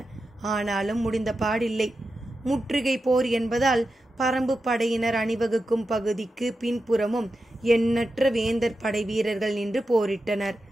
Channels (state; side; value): normal; both; correlation 0.90